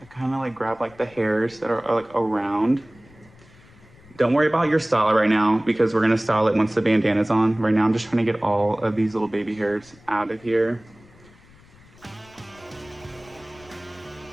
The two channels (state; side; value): noise; left; rumble, 26 dB below the sound